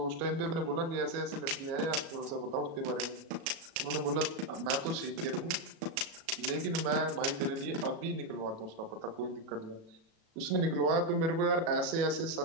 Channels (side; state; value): left; late; 36 ms